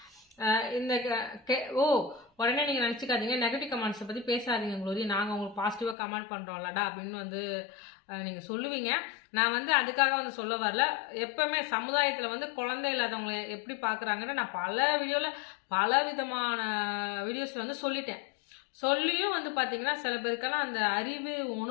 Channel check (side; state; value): right; drops out; at 6.0 s